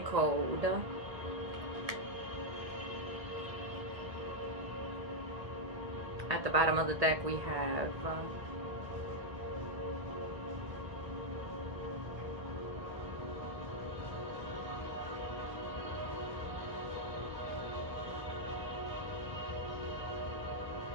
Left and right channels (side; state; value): left; late; 1.8 ms